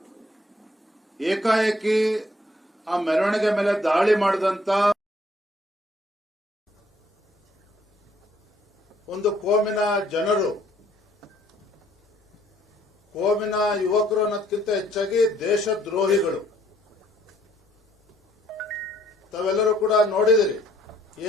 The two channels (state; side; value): normal; both; correlation 0.64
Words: ಏಕಾಏಕಿ ಆ ಮೆರವಣಿಗೆ ಮೇಲೆ ದಾಳಿ ಮಾಡಿದಂತ ಒಂದು ಕೋಮಿನ ಜನರು, ಕೋಮಿನ ಯುವಕರು ಅನ್ನೋದಕ್ಕಿಂತ ಹೆಚ್ಚಾಗಿ ದೇಶದ್ರೋಹಿಗಳು. ತಾವೆಲ್ಲರೂ ಕೂಡ ನೋಡಿದಿರಿ,